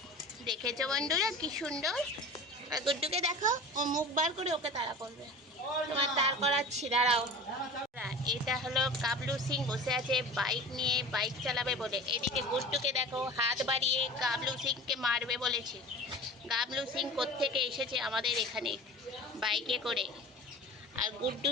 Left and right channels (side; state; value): both; normal; correlation 0.36